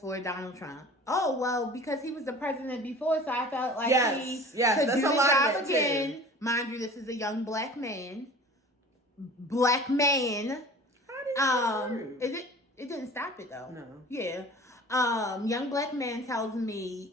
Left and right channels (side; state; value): both; normal; correlation 0.43